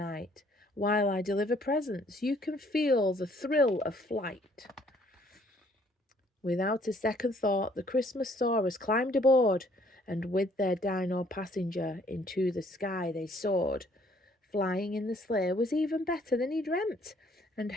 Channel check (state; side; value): normal; both; correlation 0.62